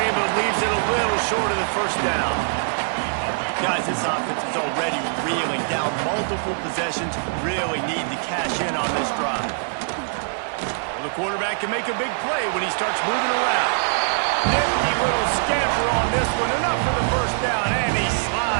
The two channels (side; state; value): left; silent; digital silence